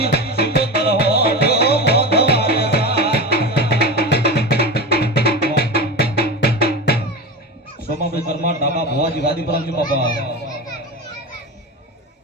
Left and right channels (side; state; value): both; normal; correlation 0.25